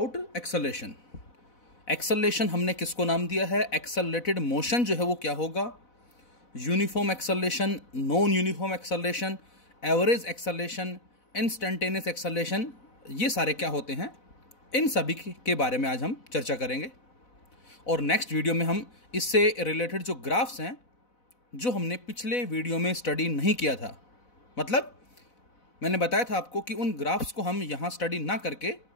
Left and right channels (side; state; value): right; late; 4.0 ms